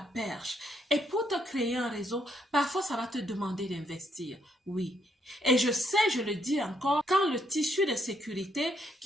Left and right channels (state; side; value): normal; both; correlation 0.74